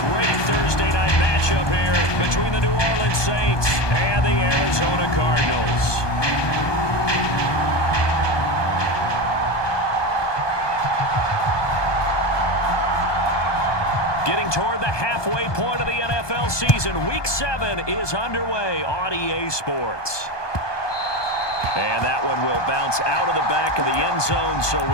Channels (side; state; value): right; late; 1.2 ms